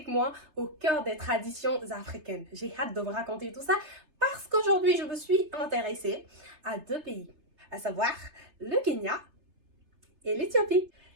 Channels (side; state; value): left; late; 3.3 ms